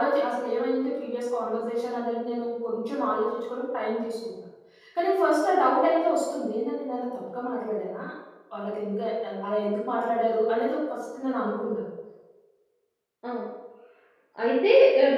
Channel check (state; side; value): identical; both; correlation 1.00